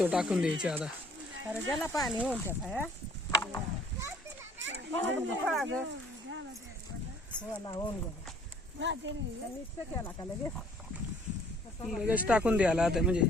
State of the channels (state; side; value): normal; both; correlation 0.57